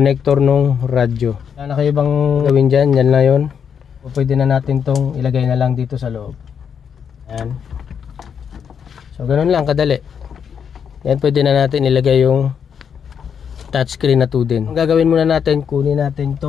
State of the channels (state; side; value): quieter; right; 7.4 dB